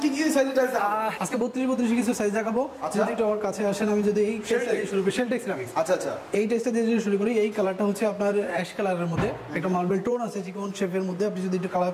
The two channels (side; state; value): both; identical; correlation 1.00